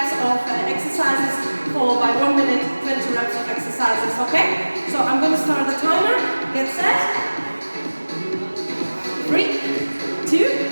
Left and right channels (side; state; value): both; inverted; correlation -1.00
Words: of exercises, followed by 1 minute, 20 reps of exercises. Okay? So I'm going to start the timer. Get set. 3, 2,